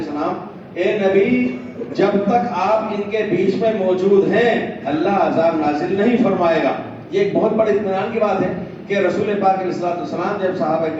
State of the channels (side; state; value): both; identical; correlation 1.00